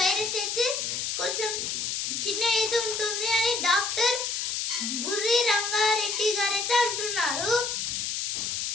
అయితే కొంచెం చిన్న అయితే ఉంటుంది అని డాక్టర్ బుర్రి రంగారెడ్డి గారు అయితే అంటున్నారు.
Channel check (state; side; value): noise; left; hiss, 1 dB below the sound